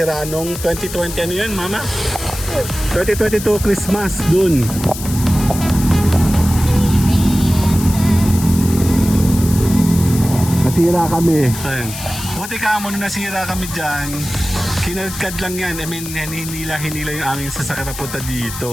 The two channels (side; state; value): left; noise; hiss, 10 dB below the sound